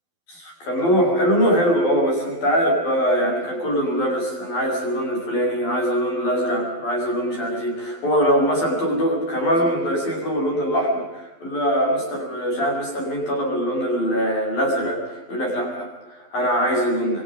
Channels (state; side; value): late; right; 12 ms